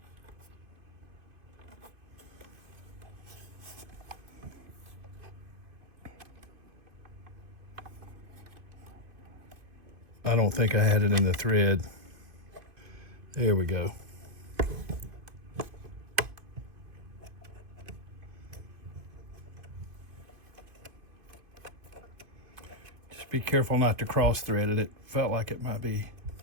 I don't think I had it in the thread. There we go. Just be careful not to cross thread it. It felt like it might be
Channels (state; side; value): late; left; 2.6 ms